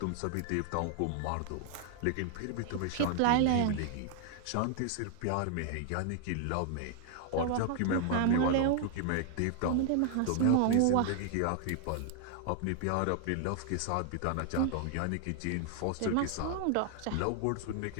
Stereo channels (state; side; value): different; both; correlation 0.00